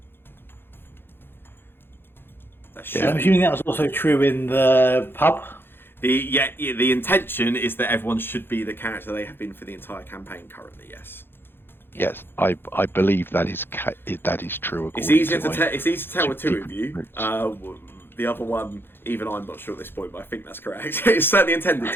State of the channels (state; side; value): late; right; 0.10 ms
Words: Yeah. I'm assuming that was also true in the pub. The intention is that everyone should be the character they have been for the entire campaign currently. Yes. Yes, I believe that is true. It's according easier to to my it's easy to tell with two of secret you. notes. The other one, even I'm not sure at this point, but I think that's correct. It's certainly intended